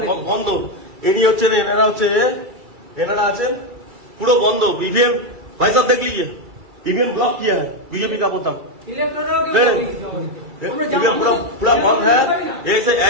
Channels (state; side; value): late; left; 2.3 ms